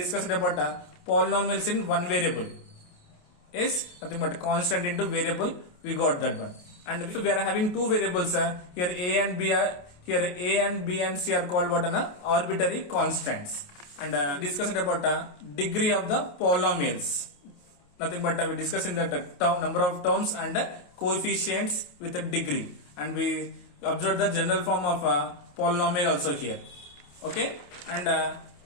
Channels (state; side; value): late; right; 28 ms